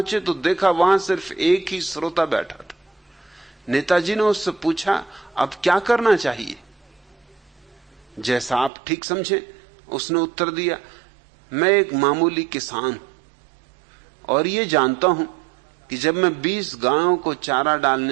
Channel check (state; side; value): drops out; left; at 8.7 s